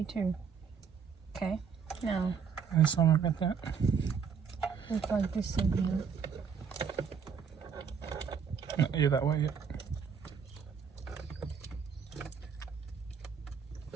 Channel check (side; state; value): left; quieter; 6.7 dB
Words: 2. Okay, now I'm sorry about that. we'll plug this in here. Not you that way yet.